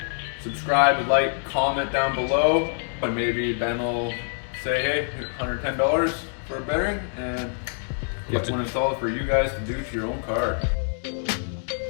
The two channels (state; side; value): silent; right; digital silence